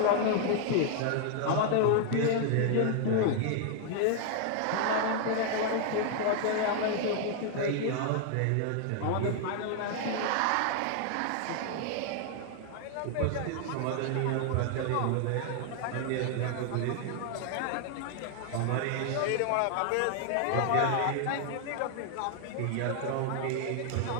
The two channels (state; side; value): different; both; correlation 0.00